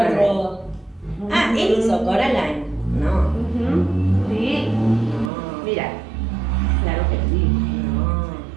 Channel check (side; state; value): left; drops out; at 5.3 s